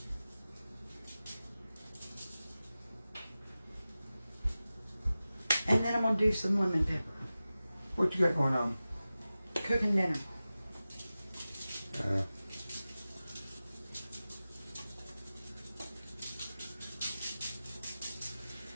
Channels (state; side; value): inverted; both; correlation -0.95